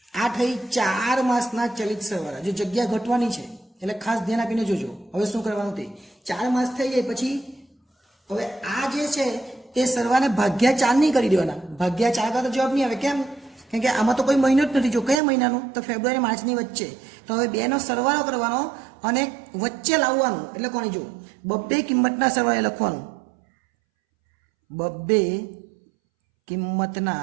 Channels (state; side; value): drops out; left; at 15.2 s